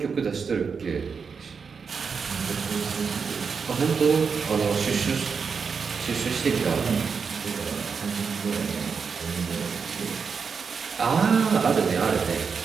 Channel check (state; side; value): quieter; left; 5.7 dB